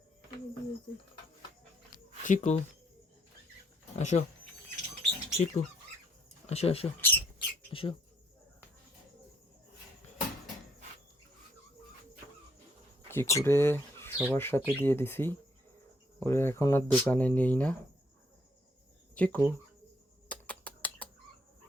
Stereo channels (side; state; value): both; normal; correlation 0.69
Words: চিকু আসো, চিকু আসো আসো আসো। চিকুরে সবার সাথে দিয়ে দিছি, ওরে এখন আর দোকানে নেই না। চিকু